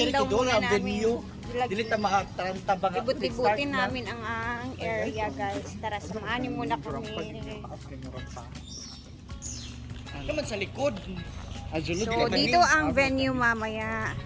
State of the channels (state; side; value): identical; both; correlation 1.00